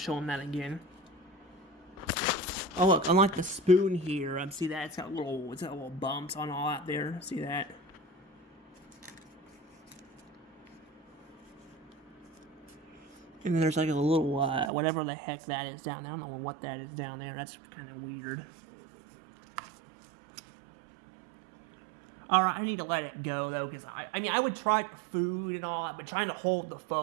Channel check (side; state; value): left; drops out; at 14.7 s